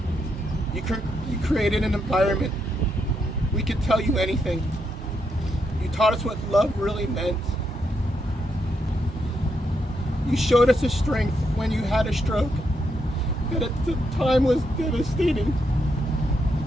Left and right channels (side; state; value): both; normal; correlation 0.80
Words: You created an environment we could tell you anything. You taught us what love really meant. You showed us a strength when you had a stroke that at the time was devastating